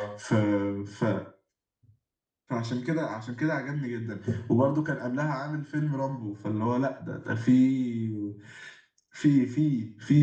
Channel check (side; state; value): both; identical; correlation 1.00